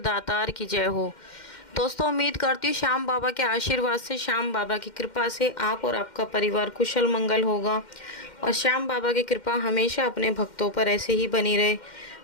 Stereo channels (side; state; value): right; late; 2.1 ms